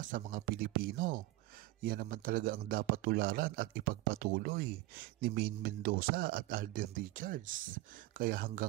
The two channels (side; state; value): left; quieter; 18.4 dB